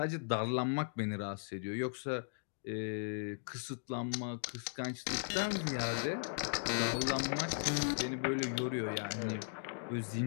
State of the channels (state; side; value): silent; right; digital silence